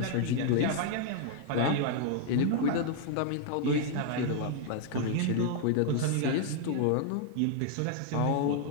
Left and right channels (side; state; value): both; different; correlation 0.00